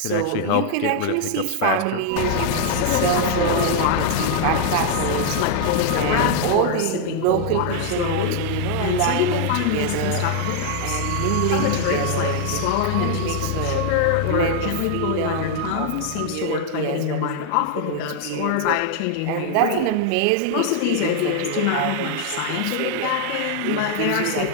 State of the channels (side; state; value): both; different; correlation 0.00